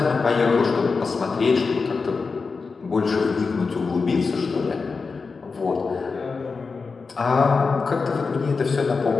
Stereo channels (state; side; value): quieter; right; 4.6 dB